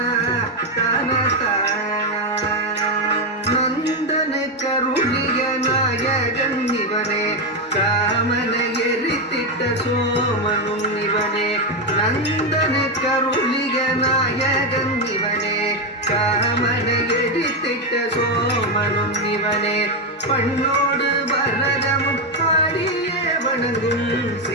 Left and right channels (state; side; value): normal; both; correlation 0.07